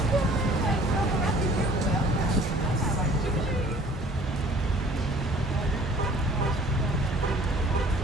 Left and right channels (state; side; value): normal; both; correlation 0.52